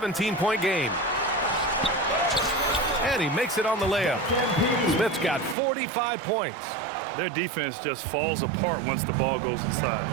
game. And he makes it on the layup. Smith's got 45 points. Their defense just falls apart once the ball goes inside.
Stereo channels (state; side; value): drops out; left; at 5.6 s